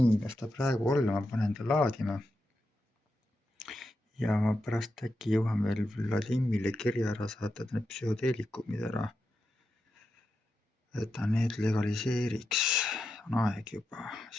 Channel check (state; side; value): normal; both; correlation 0.87